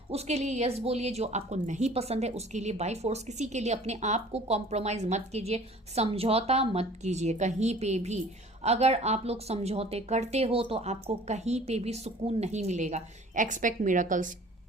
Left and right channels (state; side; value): normal; both; correlation 0.49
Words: उसके लिए यस बोलिए, जो आपको नहीं पसंद है उसके लिए बाय फोर्स किसी के लिए अपने आप को कॉम्प्रोमाइज मत कीजिए, समझौता मत कीजिए कहीं पे भी। अगर आप लोग समझौते करते हो तो आपको कहीं पे भी सुकून नहीं मिलेगा। Expect miracles.